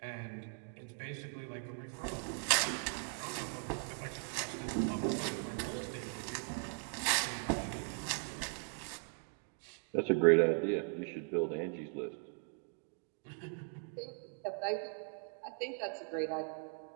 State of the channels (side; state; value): left; silent; 52 dB below the other